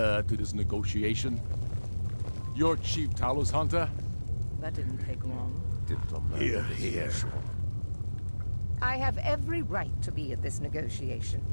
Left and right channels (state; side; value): inverted; both; correlation -1.00